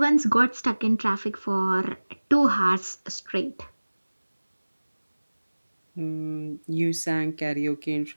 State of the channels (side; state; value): both; inverted; correlation -1.00